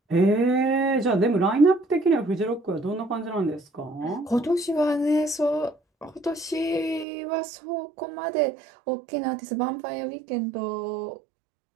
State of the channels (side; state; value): left; drops out; at 7.1 s